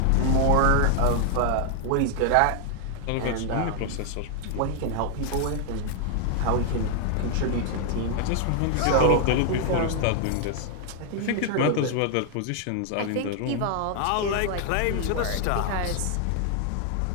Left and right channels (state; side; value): different; both; correlation 0.00